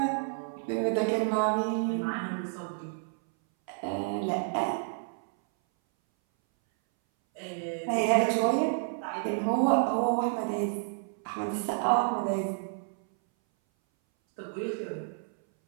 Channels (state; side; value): silent; left; 58 dB below the other